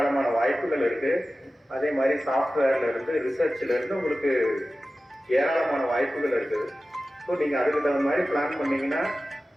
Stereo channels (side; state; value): both; normal; correlation 0.95